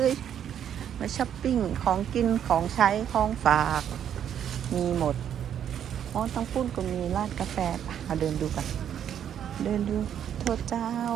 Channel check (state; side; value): quieter; left; 9.4 dB